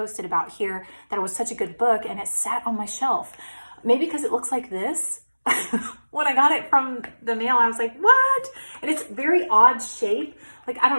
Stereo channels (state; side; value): inverted; both; correlation -1.00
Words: about here that it was such a good book, and it sat on my shelf. Maybe because it looks like this. When I got it from the mail, I was like, what? And it's very odd shape. Like, I